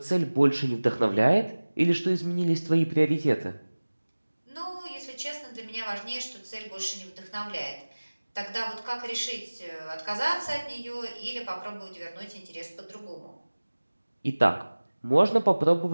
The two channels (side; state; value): both; inverted; correlation -1.00